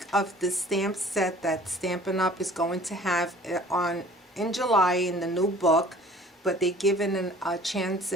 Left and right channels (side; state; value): both; normal; correlation 0.50